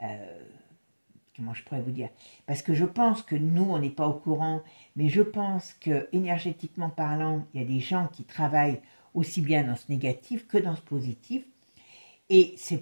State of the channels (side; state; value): both; inverted; correlation -1.00